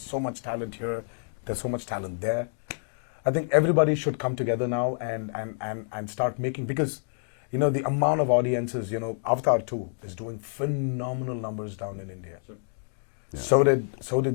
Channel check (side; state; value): right; silent; digital silence